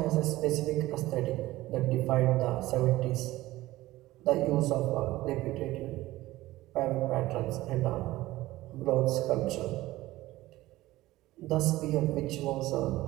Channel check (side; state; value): left; quieter; 17.3 dB